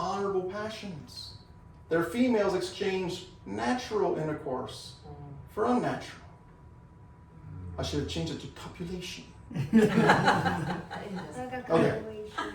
passions. Their females exchanged natural intercourse for unnatural. I should have changed it to copulation. Like a Okay.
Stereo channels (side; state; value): both; identical; correlation 1.00